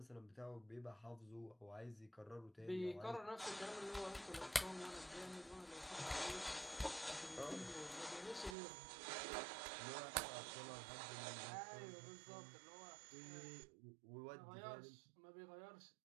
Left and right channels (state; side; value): drops out; left; at 8.6 s